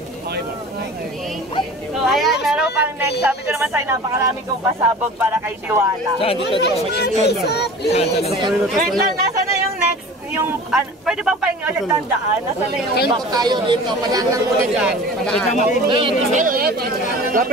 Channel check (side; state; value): both; normal; correlation 0.40